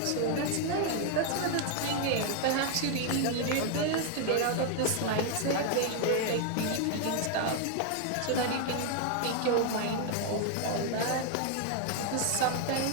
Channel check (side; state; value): both; different; correlation 0.00